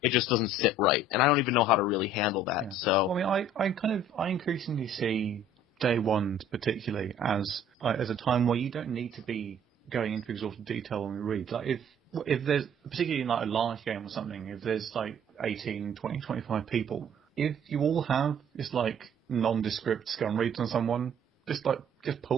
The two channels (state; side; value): normal; both; correlation 0.54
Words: just doesn't sit right. And I don't even know how to really handle that. Yeah. So well, I mean, I increasingly see day ones particularly as a time where you don't need to be going into exhaustive detail when we read. Like if there's, particularly in like a large game or something, if there's like 18, 20, 25 people, if you all have this like nondescript scum reads on someone, just